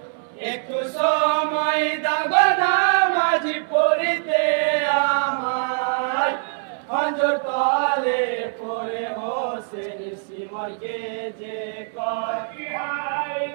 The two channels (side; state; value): left; silent; 63 dB below the other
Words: একটু সময় দাও নামাজ পড়িতে আমায় খঞ্জর তলে পড়ে হোসেন সীমাকে যে কয় হাই